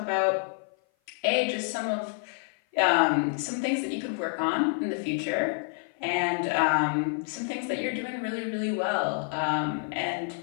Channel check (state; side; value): silent; right; 55 dB below the other